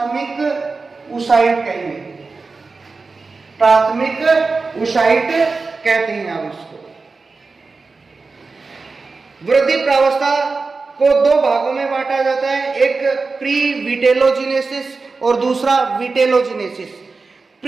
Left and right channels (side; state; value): left; quieter; 4.1 dB